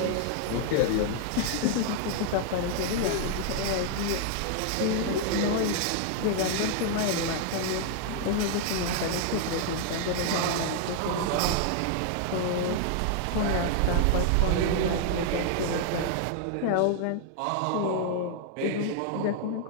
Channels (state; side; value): different; both; correlation 0.00